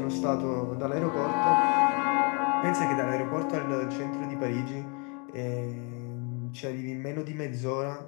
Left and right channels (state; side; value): quieter; right; 34.8 dB